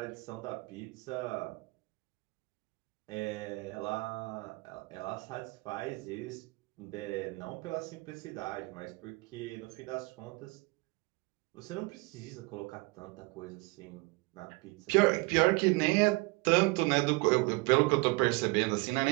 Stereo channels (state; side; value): quieter; left; 25.8 dB